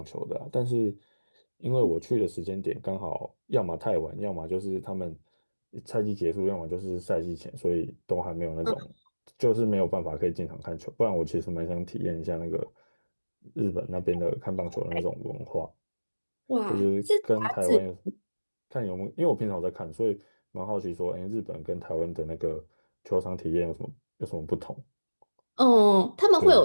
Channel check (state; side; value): inverted; both; correlation -1.00